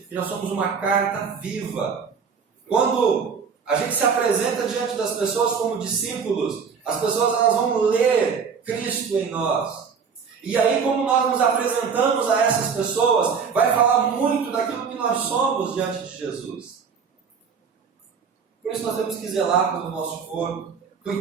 que nós somos uma carta viva. Quando a gente se apresenta diante das pessoas como discípulos, as pessoas elas vão ler Cristo em nós. E aí, como nós nos apresentamos a essas pessoas, vai falar muito daquilo que nós somos diante de Jesus. Por isso nós temos que zelar pelo nosso corpo,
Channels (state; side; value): quieter; left; 6.1 dB